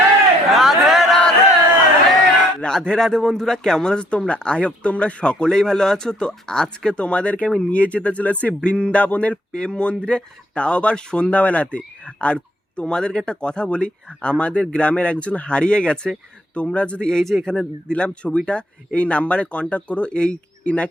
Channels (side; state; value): both; normal; correlation 0.66